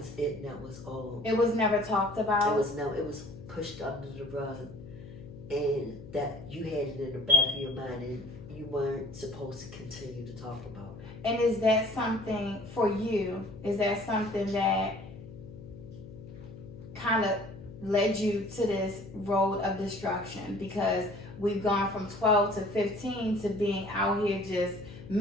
it, and that was all. It was never talked about? It was pushed under the rug. And that you had it in the back of your mind, and you weren't supposed to continue to talk about it. And is that something for you? Is that something that kind of led you to this road of destruction? Because we've gone from 12 to 15 to being out here just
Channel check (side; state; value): left; noise; hum, 15 dB below the sound